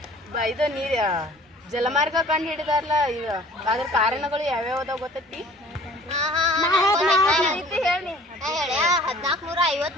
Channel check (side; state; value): both; normal; correlation 0.49